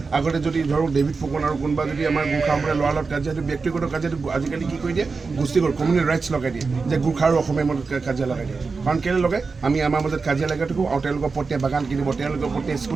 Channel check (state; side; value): quieter; left; 4.5 dB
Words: আগতে যদি ধৰক ডেভিড ফুকন আৰু কোনোবা যদি আমাৰ গোৰ্খা সম্প্ৰদায়ৰ ল'ৰাৰ লগত কাজিয়াটো ব্যক্তিগত কাজিয়াটো আজিকালি কি কৰি দিয়ে, গোষ্ঠীগত কমিউনিটি ৰাইটছ লগাই দিয়ে, যে গোৰ্খা আৰু অসমীয়াৰ মাজত কাজিয়া লগাই দিয়ে। কাৰণ কেলৈ লগাই, আমি আমাৰ মাজত কাজিয়া লগাই থাকোঁ আৰু তেওঁলোকৰ প্ৰত্যেক বাগান কিনিব, তেওঁলোকৰ প্ৰত্যেক